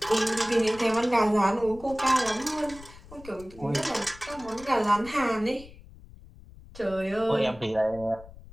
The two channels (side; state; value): left; noise; rumble, 19 dB below the sound